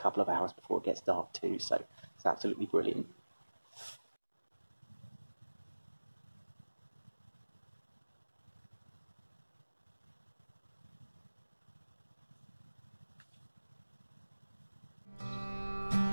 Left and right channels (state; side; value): inverted; both; correlation -1.00